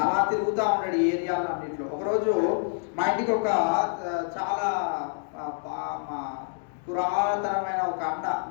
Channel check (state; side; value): silent; right; digital silence